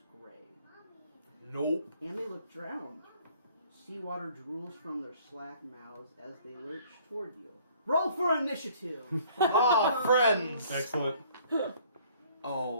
gray. Nope. And they look drowned. Seawater drools from their slack mouths as they lurch toward you. Roll for initiative! Ah, friends. Excellent.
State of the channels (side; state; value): both; inverted; correlation -0.58